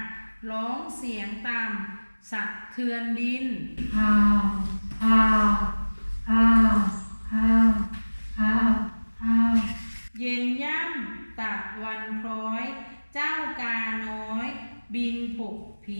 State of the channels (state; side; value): inverted; both; correlation -1.00